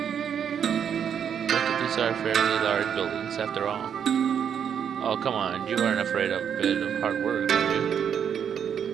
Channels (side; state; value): left; quieter; 8.1 dB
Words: Both of these are fairly large buildings, after all. Oh, come on! You aren't afraid of a bit of hard work, are you?